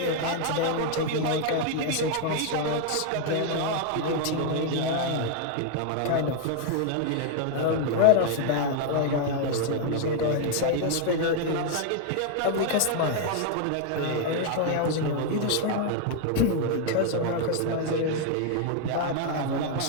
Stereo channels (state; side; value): different; both; correlation 0.00